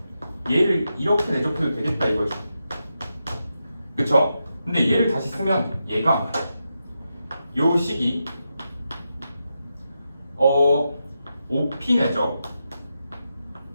얘를 이렇게 내적해도 되겠다 이거죠. 그쵸? 근데 얘를 다시 쓰면 얘가 요 식이 OP 내적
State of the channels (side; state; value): both; inverted; correlation -0.87